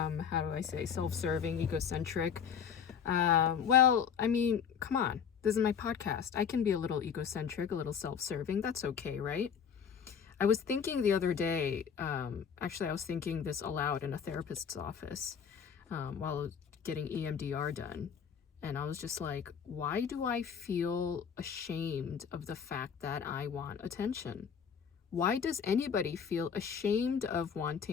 do I say, self-serving, egocentric? Well, I mean, come on. This is my podcast. I can be a little egocentric, a little self-serving. That's okay, right? I was thinking the other day, actually I was thinking this aloud in a therapist's office while getting EMDR done. And I was just like, why do I feel ashamed of the fact that I want attention? Why does anybody feel ashamed of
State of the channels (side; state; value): right; quieter; 7.3 dB